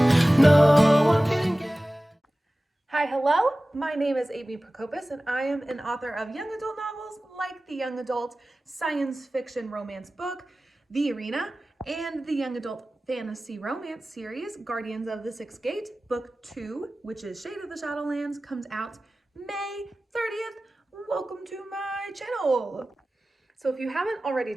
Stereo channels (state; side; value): normal; both; correlation 0.97